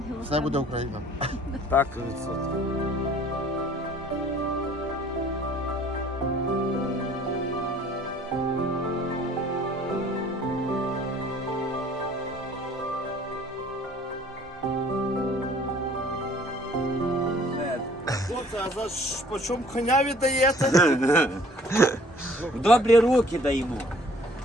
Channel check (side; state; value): both; normal; correlation 0.55